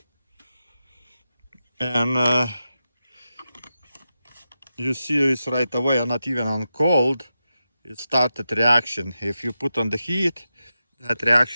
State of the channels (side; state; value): both; inverted; correlation -0.90